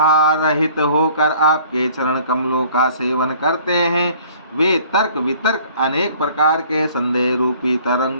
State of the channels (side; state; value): both; inverted; correlation -0.54